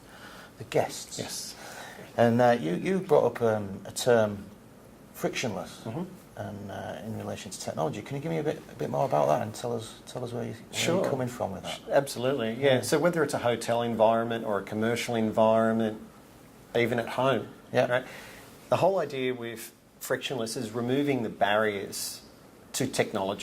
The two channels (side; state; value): both; identical; correlation 1.00